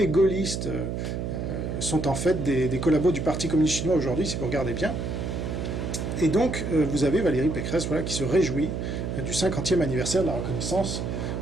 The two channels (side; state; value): right; noise; hum, 3 dB below the sound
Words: gaullistes sont en fait des collabos du Parti communiste chinois aujourd'hui, si vous regardez bien. Et donc, vous avez Valérie Pécresse voilà, qui se réjouit du 50e anniversaire de la reconnaissance